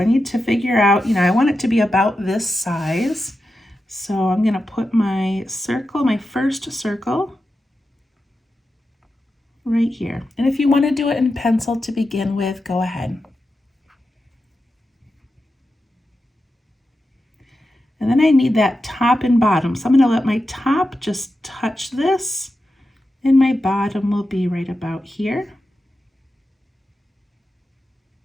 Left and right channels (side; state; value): both; normal; correlation 0.90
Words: need to figure out, I want it to be about this size. So I'm going to put my circle, my first circle, right here. And if you want to do it in pencil to begin with, go ahead. And then I need that top and bottom. So I'm going to let my top just touch this, and my bottom will be right about here.